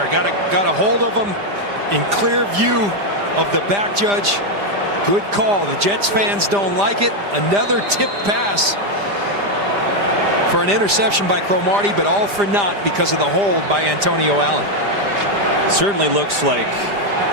Got a hold of him in clear view of the back judge. Good call. The Jets fans don't like it. Another tip pass for an interception by Cromartie, but all for naught because of the hold by Antonio Allen. Certainly looks like.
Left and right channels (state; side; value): late; left; 5.0 ms